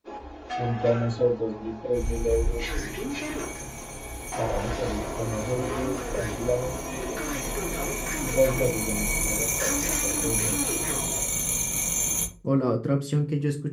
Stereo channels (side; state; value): both; identical; correlation 1.00